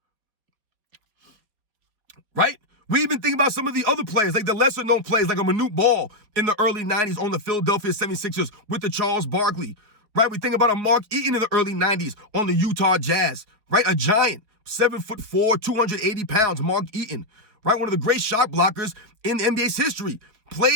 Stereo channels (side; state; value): left; late; 4.7 ms